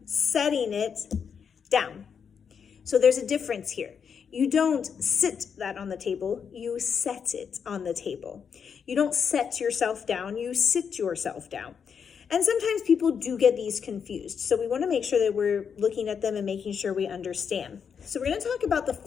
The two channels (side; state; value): right; quieter; 6.9 dB